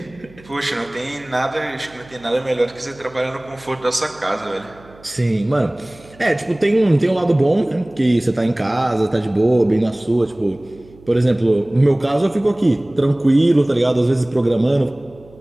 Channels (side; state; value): right; noise; hum, 24 dB below the sound